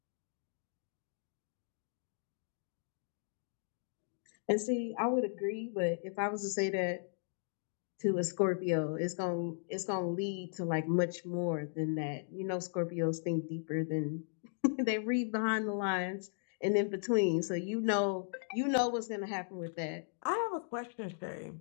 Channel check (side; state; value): right; silent; digital silence